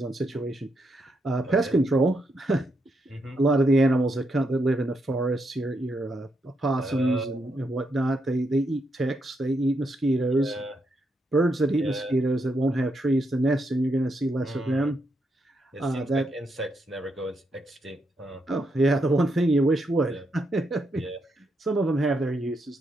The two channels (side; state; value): both; normal; correlation 0.80